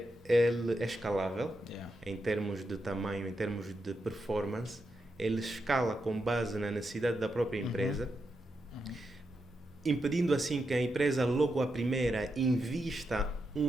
escalável, em termos de tamanho, em termos de performance, ele escala com base na necessidade da própria empresa, impedindo assim que a empresa logo à primeira invista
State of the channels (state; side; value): normal; both; correlation 0.85